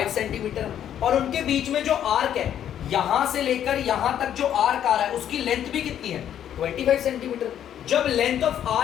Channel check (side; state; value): right; quieter; 10.2 dB